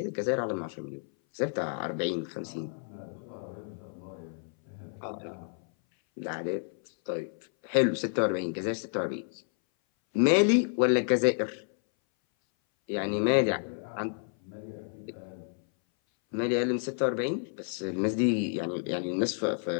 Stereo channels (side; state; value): right; silent; 58 dB below the other